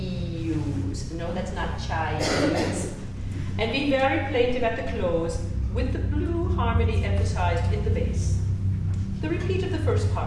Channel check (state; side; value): identical; both; correlation 1.00